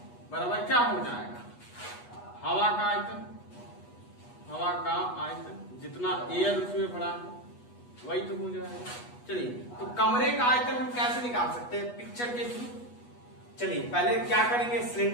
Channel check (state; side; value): late; right; 8.2 ms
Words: बराबर क्या हो जाएगा, हवा का आयतन जितना एयर उसमें भरा है वही तो हो जाएगा। चलिए तो कमरे का आयतन हम कैसे निकाल सकते हैं, पिक्चर के थ्रू। चलिए पहले क्या करेंगे,